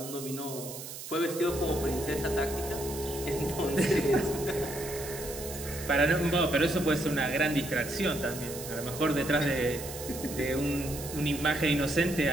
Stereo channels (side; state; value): right; noise; hiss, 10 dB below the sound